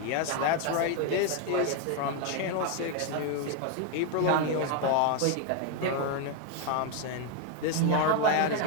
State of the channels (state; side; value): different; both; correlation 0.01